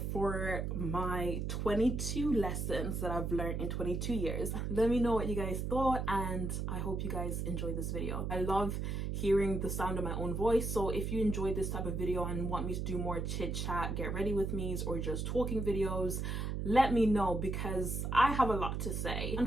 for my 22 lessons that I've learned in 22 years. Let me know what you guys thought, and I hope you guys enjoyed this video. I love hearing the sound of my own voice, so if you enjoyed this type of video and want me to do more chit chat, get ready with me's, or just talking videos, let me know, because I have a lot to say.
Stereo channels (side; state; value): right; noise; hum, 2 dB below the sound